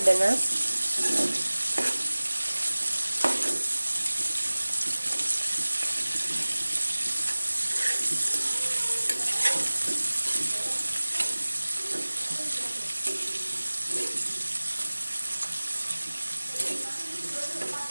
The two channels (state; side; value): inverted; both; correlation -1.00